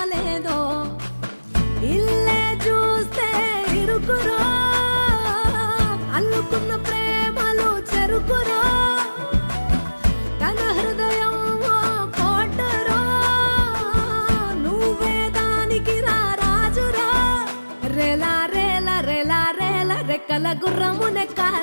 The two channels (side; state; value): both; inverted; correlation -1.00